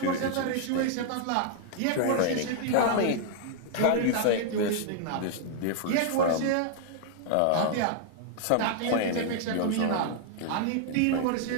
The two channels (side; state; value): both; different; correlation -0.01